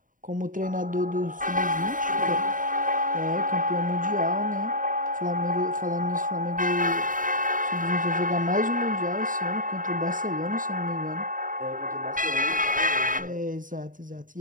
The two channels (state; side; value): late; left; 0.39 ms